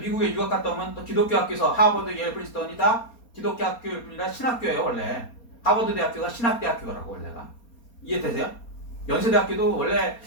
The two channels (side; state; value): right; late; 4.3 ms